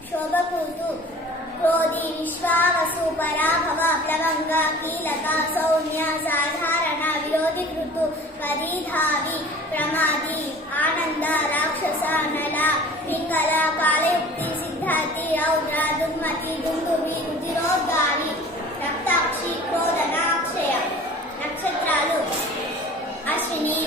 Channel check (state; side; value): normal; both; correlation 0.45